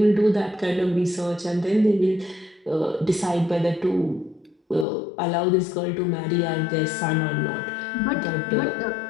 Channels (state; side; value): drops out; right; at 4.9 s